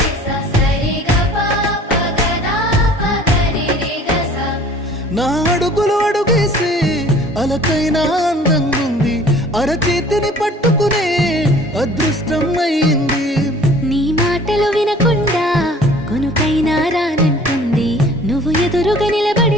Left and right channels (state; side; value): normal; both; correlation 0.50